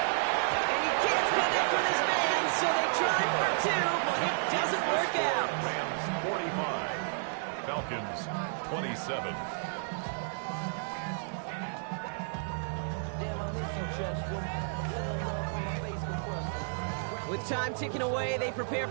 And he can't connect with his man, so they tried for 2, but it doesn't work out. Rams 45, Falcons 27. With time ticking away, they prepare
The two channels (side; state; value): left; silent; 57 dB below the other